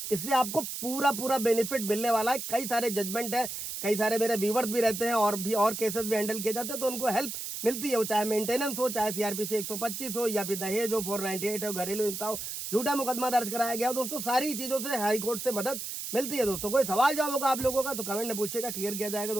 इससे आपको पूरा बेनिफिट मिलने वाला है। कई सारे जजमेंट है, कई सारे मेरे व्यूवर्स भी रहते हैं और केसेस भी हैंडल किए जाते हैं तो उनको हेल्प मिलती है, वो चाहे मेंटेनेंस हो, चाहे CRPC 125 हो या फिर दहेज हो, 498 हो, घरेलू हिंसा हो, झूठा मुकदमा दर्ज कराया गया दोस्तों, सारी चीजों से हाई कोर्ट से मदद मिलती है दोस्तों। कोई सवाल जवाब होगा आप लोगों का तो कमेंट में पूछेगा, क्लियर किया जाएगा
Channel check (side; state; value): right; noise; hiss, 6 dB below the sound